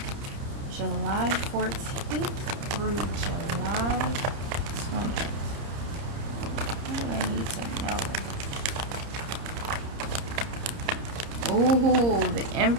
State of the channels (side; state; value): left; late; 30 ms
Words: July 14th through July 20th. What do I need to know? Ooh, the